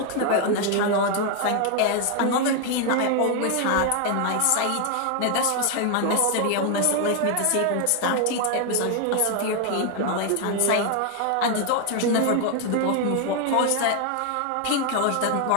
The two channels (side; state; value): both; different; correlation 0.01